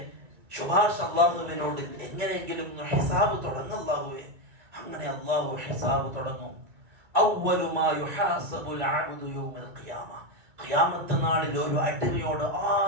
ശുപാർശ അല്ലാഹുവിനോട് എങ്ങനെയെങ്കിലും ഹിസാബ് തുടങ്ങല്ലാഹുവേ. അങ്ങനെ അല്ലാഹു ഹിസാബ് തുടങ്ങും. അവ്വലു മാ യുഹാസബുൽ അബ്ദു യൗമൽ ഖിയാമ, ഖിയാമത്ത് നാളിൽ ഒരു അടിമയോട്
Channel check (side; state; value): left; late; 2.2 ms